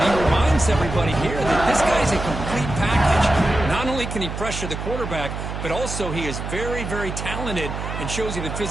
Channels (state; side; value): noise; right; hum, 6 dB below the sound